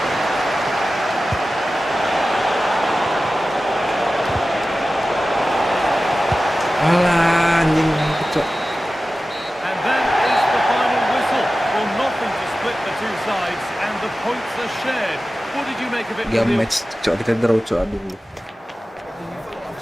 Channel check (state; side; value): normal; both; correlation 0.95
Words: Alah, anjing kecok. And that is the final whistle. Well, nothing to split the two sides, and the points are shared. What did you make of it? Game match, cok, kita draw, cok, aduh.